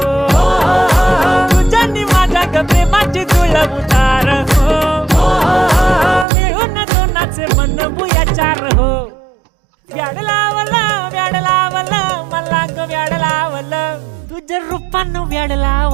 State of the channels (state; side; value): drops out; left; at 6.2 s